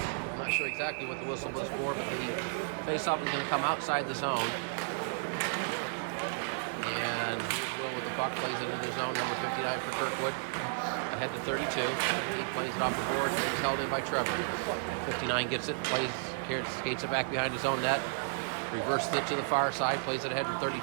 I'm not sure exactly what the whistle was for, but the face-off is going to come outside the zone. And with the puck plays into the zone. Number 59 for Kirkwood. Ahead to 32. Plays it off the board. Held in by Trevor. 59 gets it. Plays here. Skates it back behind his own net. Reverses it to the far side. Plays it ahead to 32.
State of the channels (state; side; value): silent; left; 56 dB below the other